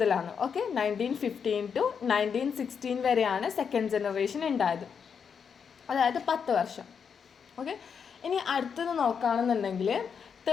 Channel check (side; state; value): right; quieter; 6.7 dB